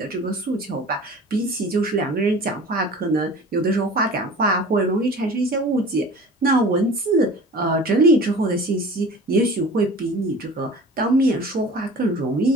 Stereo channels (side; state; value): both; normal; correlation 0.41